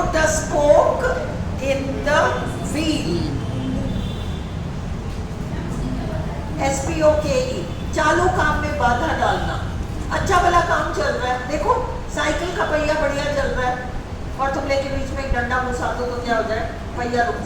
a spoke in the wheel, S-P-O-K-E, चालू काम में बाधा डालना। अच्छा भला काम चल रहा है, देखो साइकिल का पहिया बढ़िया चल रहा है और तुम लेके बीच में एक डंडा घुसा दो तो क्या हो जाए? पहिया रुक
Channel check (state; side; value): identical; both; correlation 1.00